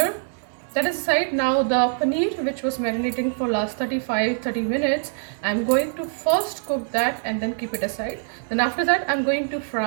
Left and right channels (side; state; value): left; silent; digital silence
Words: That is aside. Now the paneer, which was marinating for last 30 minutes, I'm going to first cook that and then keep it aside. Then after that I'm going to